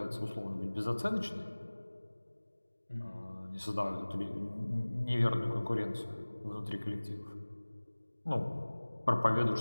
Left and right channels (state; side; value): inverted; both; correlation -1.00